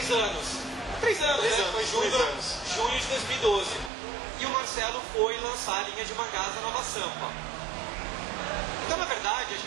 anos. 3 anos, né? Foi junho de 2012. E o Marcelo foi lançar a linha de mangás da Nova Sampa. Então, na verdade, a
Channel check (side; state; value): left; drops out; at 3.9 s